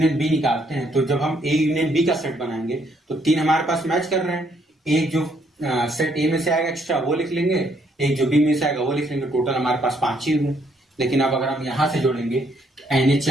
बी निकालते हैं तो जब हम ए यूनियन बी का सेट बनाएंगे तो 3 हमारे पास मैच कर रहे हैं, एक जो सेट ए में से आएगा एक्स्ट्रा वो लिख लेंगे, एक जो बी में से आएगा वो लिख लेंगे, टोटल हमारे पास 5 ही हुए। लेकिन अब अगर हम यहां से जोड़ेंगे तो एन ए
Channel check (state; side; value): normal; both; correlation 0.70